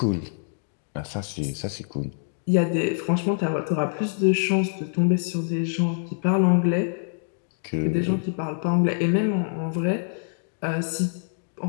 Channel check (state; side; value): silent; right; digital silence